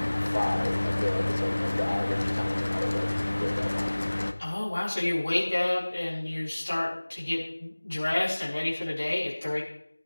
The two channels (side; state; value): both; inverted; correlation -1.00